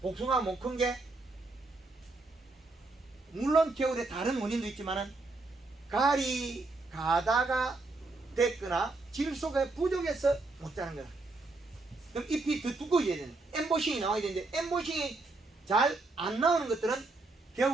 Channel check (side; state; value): left; quieter; 3.3 dB